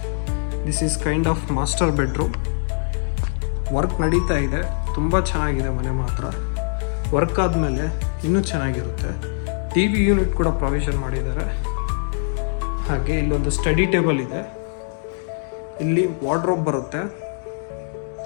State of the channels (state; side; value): silent; right; digital silence